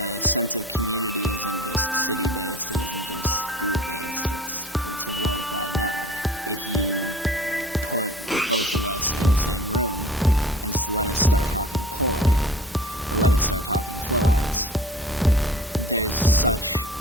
sense of community isn't just city-based, it isn't just group-based, it's a worldwide network. If you put both of us in the same room and just let us start talking poi, or let us start talking flow arts, there's such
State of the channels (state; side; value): normal; both; correlation 0.44